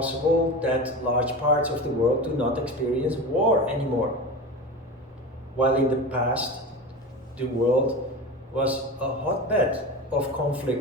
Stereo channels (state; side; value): normal; both; correlation 0.28